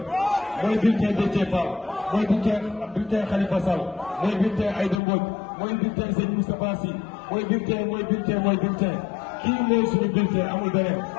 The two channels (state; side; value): drops out; right; at 5.0 s